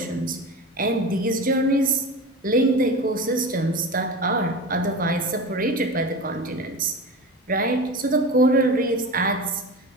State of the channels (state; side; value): normal; both; correlation 0.29